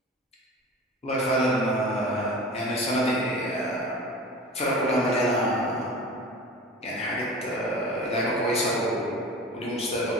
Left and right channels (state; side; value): normal; both; correlation 0.36